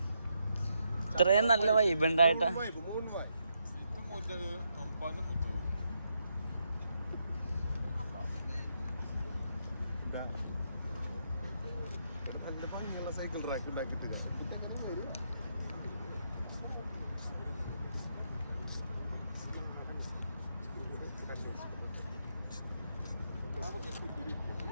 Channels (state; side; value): inverted; both; correlation -0.80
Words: ഇത്രയും നല്ല വൈബ് ഉണ്ടായിട്ടാ. സൈക്കിൾ ട്രാക്ക് ഉണ്ടാക്കിട്ട്